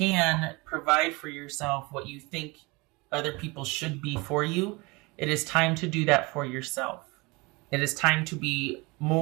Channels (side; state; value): left; quieter; 25.7 dB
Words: provide for yourself what you think other people should be for you. It is time to do that for yourself. It is time to be